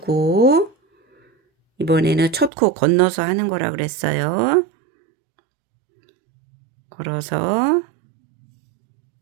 이번에는 첫 코 건너서 하는 거라 그랬어요. 걸어서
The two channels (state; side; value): drops out; left; at 2.5 s